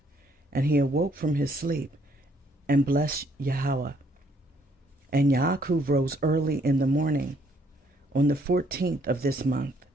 And he awoke from his sleep, and blessed Yahweh. And Yaakov rose early in the morning, on the 14th of this month,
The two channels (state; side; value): normal; both; correlation 0.67